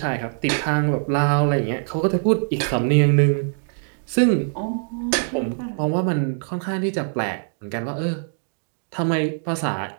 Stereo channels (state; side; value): silent; left; digital silence